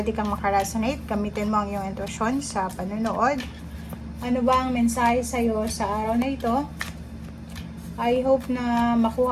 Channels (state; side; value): identical; both; correlation 1.00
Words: kang makaresonate. Gamitin mo ang iyong intuition sa panonood. Ano ba ang mensahe sa'yo sa araw na ito? I hope na